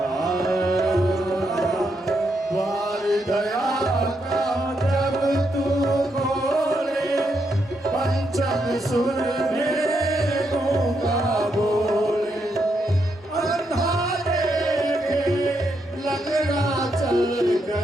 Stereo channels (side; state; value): both; normal; correlation 0.80